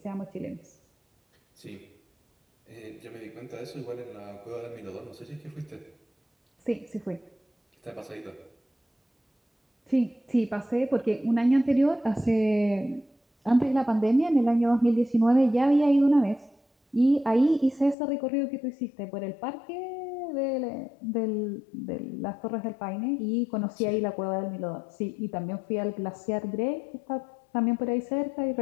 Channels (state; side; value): drops out; right; at 17.9 s